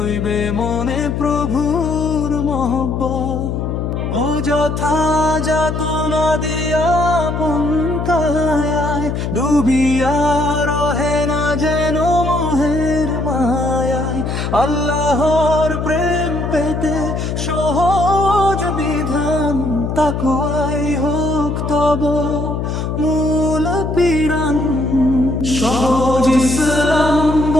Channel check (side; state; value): left; noise; hum, 2 dB below the sound